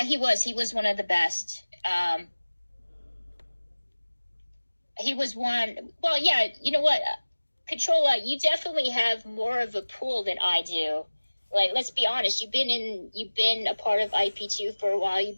he was one of the best. He was one. Well, yeah, you know what, Controlla, you definitely have more of a pool than I do. Like, let's be honest, you've been a part of IP2 for a while. You've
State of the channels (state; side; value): inverted; both; correlation -1.00